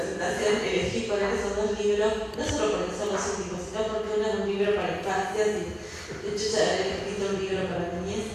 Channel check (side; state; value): both; identical; correlation 1.00